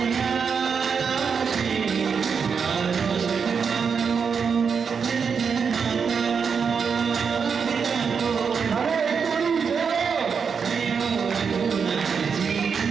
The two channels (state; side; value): quieter; left; 6.1 dB